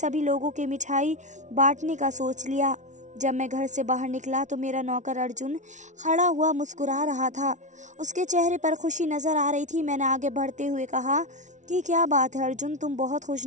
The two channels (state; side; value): late; left; 0.36 ms